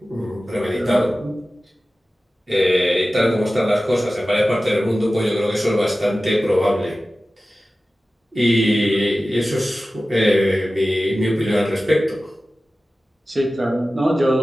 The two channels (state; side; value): normal; both; correlation 0.96